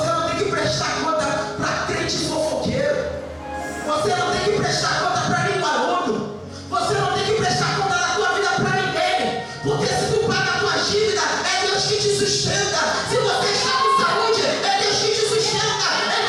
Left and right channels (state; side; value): identical; both; correlation 1.00